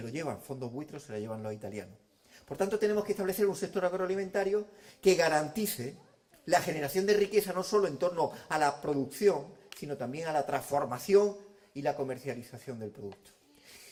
lo llevan fondos buitres, se lo llevan los italianos. Por tanto, tenemos que establecer un sector agroalimentario que garantice la generación de riqueza no solo en torno a la producción, sino también a la transformación y la comercialización del producto.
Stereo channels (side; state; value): both; identical; correlation 1.00